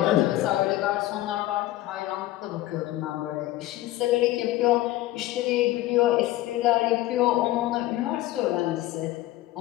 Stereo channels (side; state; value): right; quieter; 15.8 dB